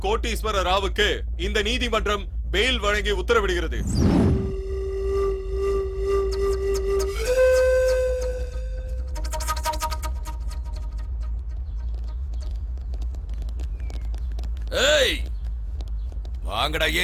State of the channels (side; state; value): both; identical; correlation 1.00